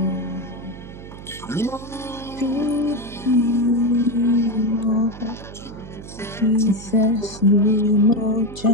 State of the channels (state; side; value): noise; right; hum, 14 dB below the sound